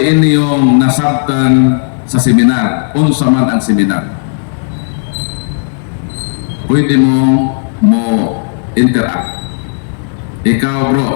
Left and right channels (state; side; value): silent; right; digital silence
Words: inyong nasabtan sa seminar, unsa man ang seminar. Pwede mo interact. Ikaw